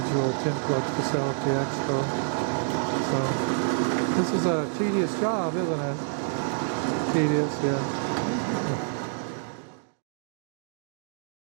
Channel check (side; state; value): left; silent; digital silence